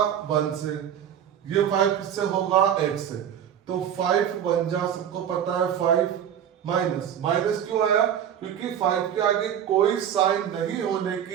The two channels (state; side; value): quieter; left; 9.4 dB